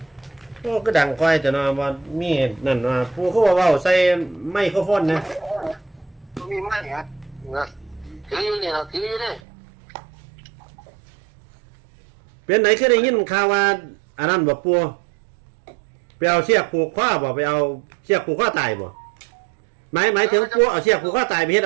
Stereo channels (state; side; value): drops out; left; at 9.4 s